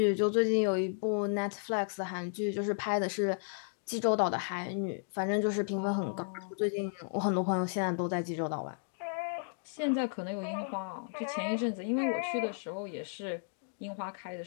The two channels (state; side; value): silent; right; digital silence